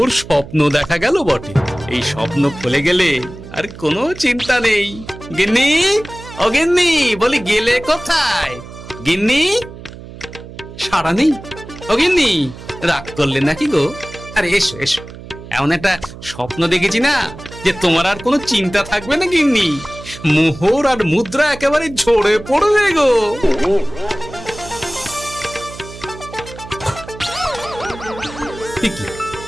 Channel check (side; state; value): right; noise; hum, 15 dB below the sound